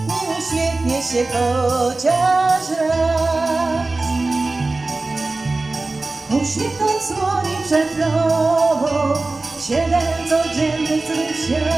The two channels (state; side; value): quieter; left; 3.3 dB